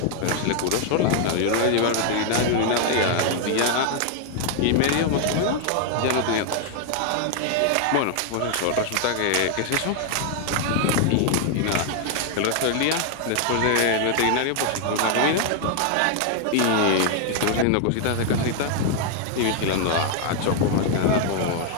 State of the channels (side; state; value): both; different; correlation 0.00